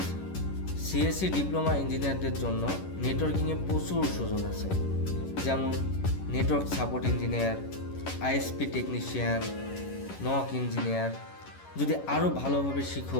সিএসসি ডিপ্লোমা ইঞ্জিনিয়ারদের জন্য নেটওয়ার্কিংয়ে প্রচুর সুযোগ আছে, যেমন network support engineer, ISP technician, knock engineer. যদি আরও ভালোভাবে শিখো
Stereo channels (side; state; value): right; late; 11 ms